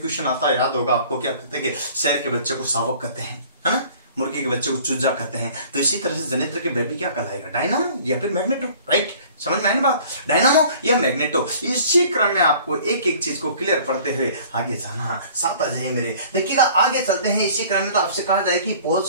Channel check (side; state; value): both; inverted; correlation -0.50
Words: आता है, याद होगा आपको। क्या कहते हैं कि शेर के बच्चे को शावक कहते हैं, है ना, मुर्गी के बच्चे को चूजा कहते हैं। तो इसी तरह से जनित्र के बेबी क्या कहलाएगा, डायनामो या फिर मैग्नेटो। राइट, समझ में आई बात, डायनामो या मैग्नेटो। इसी क्रम में आपको एक एक चीज को क्लियर पढ़ते हुए आगे जाना। साथ आ जाइए मेरे, देखिएगा आगे चलते हैं। इसी क्रम में तो आपसे कहा जाए कि